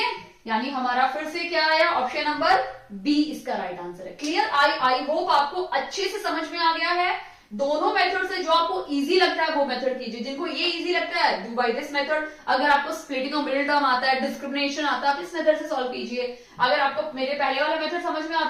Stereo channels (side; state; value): both; identical; correlation 1.00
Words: यानी हमारा फिर से क्या आया ऑप्शन नंबर बी इसका राइट आंसर है। क्लियर? आई होप आपको अच्छे से समझ में आ गया है। दोनों मेथड से जो आपको इजी लगता है वो मेथड कीजिए, जिनको ये इजी लगता है डू बाय दिस मेथड। अगर आपको स्प्लिटिंग ऑफ मिडिल टर्म आता है, डिस्क्रिमिनेशन आता है, आप इस मेथड से सॉल्व कीजिए। अगर आपको मेरे पहले वाला मेथड समझ में